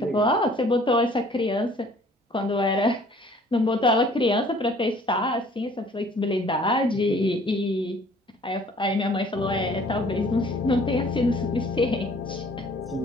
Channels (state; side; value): normal; both; correlation 0.55